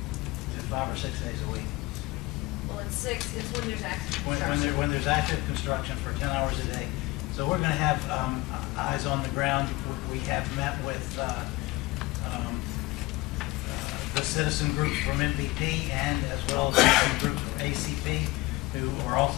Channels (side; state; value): right; quieter; 21.0 dB